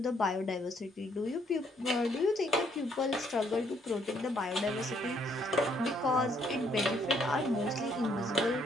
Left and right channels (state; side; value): normal; both; correlation 0.69